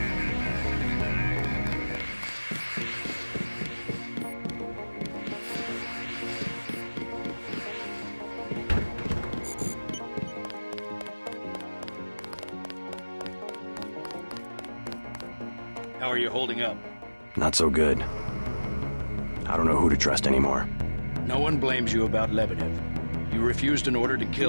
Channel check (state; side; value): inverted; both; correlation -1.00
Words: How are you holding up? Not so good. I don't know who to trust anymore. No one blames you about Lebedev. You refused an order to